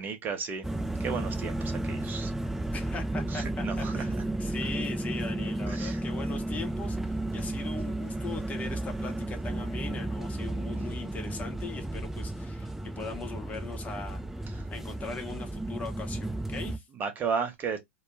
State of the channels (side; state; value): both; normal; correlation 0.81